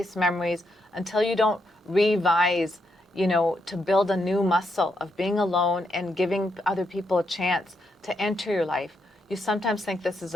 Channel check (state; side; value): normal; both; correlation 0.80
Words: memories, until you don't revise, to build a new muscle of being alone and giving other people a chance to enter your life, you sometimes think this is